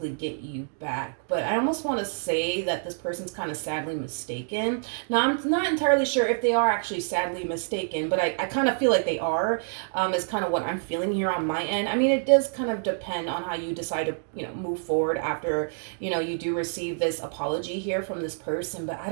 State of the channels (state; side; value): silent; left; digital silence